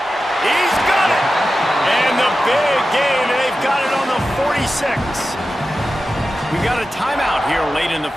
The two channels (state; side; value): normal; both; correlation 0.93